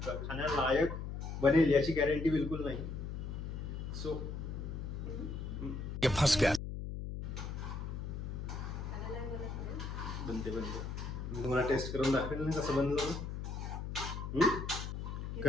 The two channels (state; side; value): noise; left; hum, 5 dB below the sound